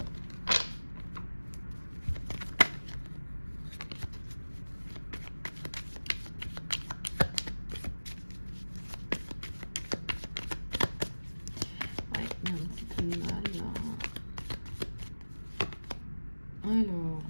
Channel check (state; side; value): inverted; both; correlation -1.00